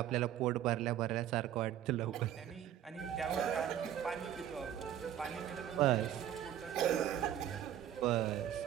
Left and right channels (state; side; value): quieter; left; 10.8 dB